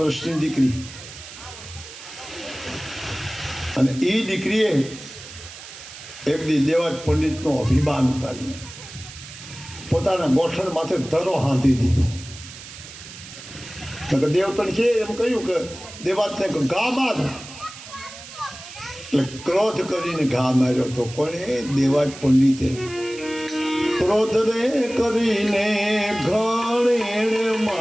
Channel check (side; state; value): right; noise; hiss, 15 dB below the sound